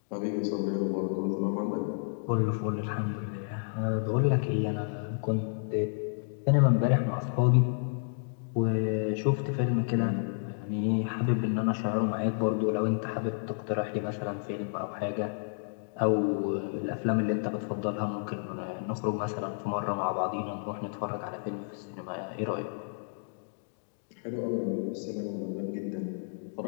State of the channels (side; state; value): right; silent; digital silence